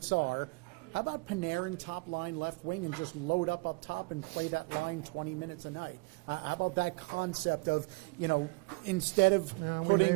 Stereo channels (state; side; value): quieter; left; 27.4 dB